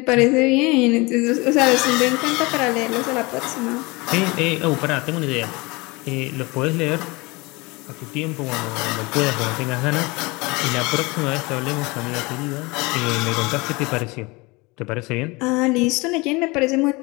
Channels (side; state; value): right; quieter; 24.9 dB